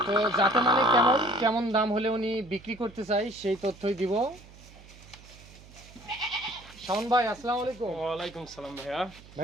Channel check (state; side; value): noise; right; hum, 21 dB below the sound